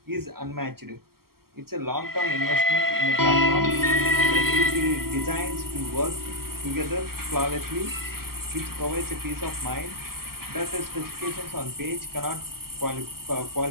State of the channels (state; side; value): late; left; 0.93 ms